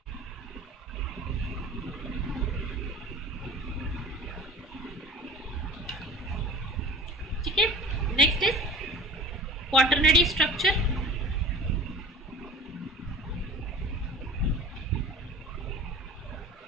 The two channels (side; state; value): both; normal; correlation 0.42